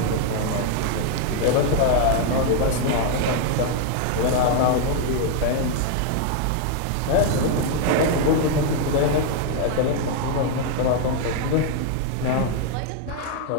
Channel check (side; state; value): both; different; correlation 0.00